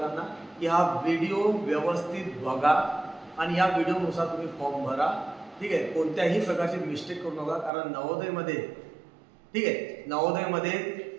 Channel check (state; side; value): drops out; left; at 7.7 s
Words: की हा व्हिडिओ व्यवस्थित बघा आणि या व्हिडिओनुसार तुम्ही फॉर्म भरा. ठीक आहे. कोणत्याही प्रकारची मिस्टेक करू नका, कारण नवोदयमध्ये, ठीक आहे, नवोदयमध्ये